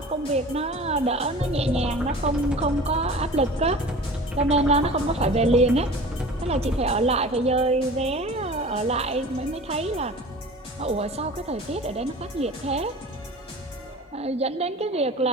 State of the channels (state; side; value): normal; both; correlation 0.39